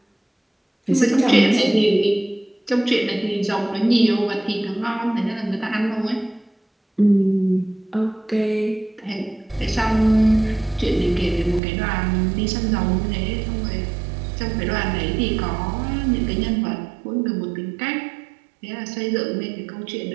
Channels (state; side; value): drops out; left; at 11.6 s